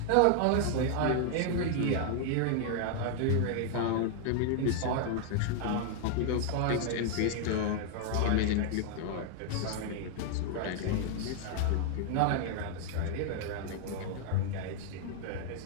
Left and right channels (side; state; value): both; different; correlation 0.00